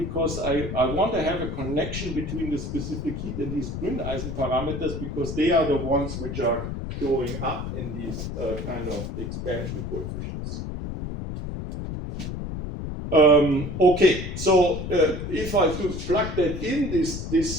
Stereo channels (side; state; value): left; noise; rumble, 6 dB below the sound